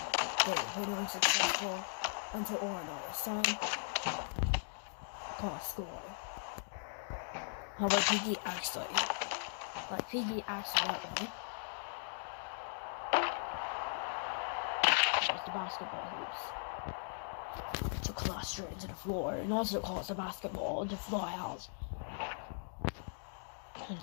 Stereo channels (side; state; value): right; silent; digital silence